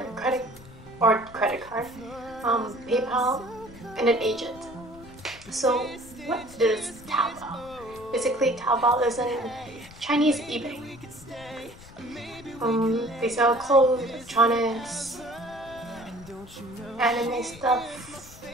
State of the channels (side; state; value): left; noise; rumble, 19 dB below the sound